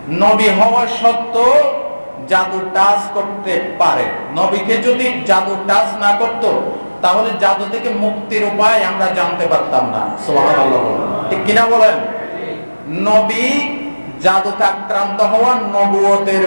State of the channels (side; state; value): both; inverted; correlation -1.00